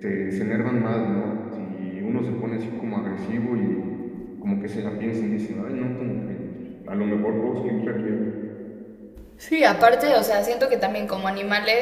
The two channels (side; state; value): both; identical; correlation 1.00